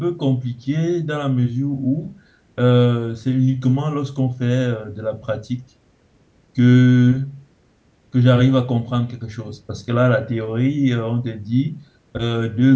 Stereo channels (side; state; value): both; identical; correlation 1.00